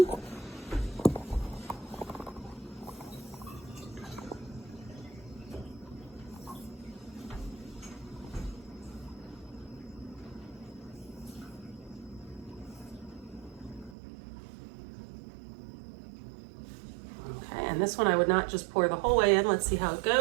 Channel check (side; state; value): left; drops out; at 14.0 s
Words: Okay, and this one I would not just pour the whole way in. Let's see how it